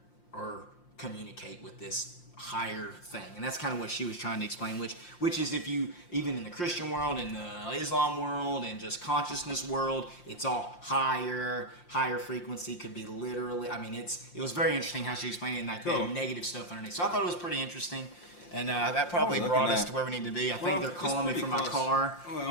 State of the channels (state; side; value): late; right; 5.7 ms